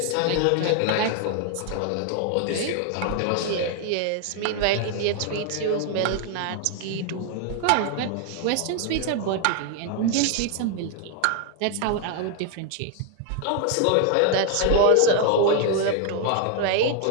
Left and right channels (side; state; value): both; different; correlation 0.00